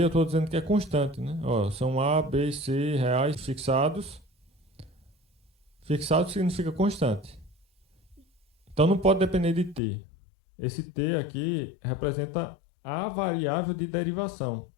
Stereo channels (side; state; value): right; drops out; at 9.8 s